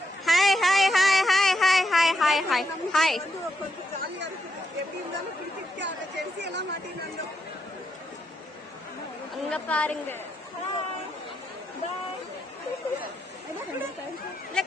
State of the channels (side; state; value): both; normal; correlation 0.81